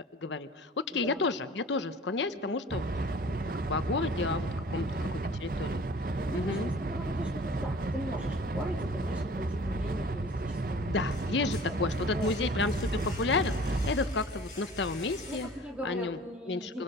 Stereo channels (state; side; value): normal; both; correlation 0.46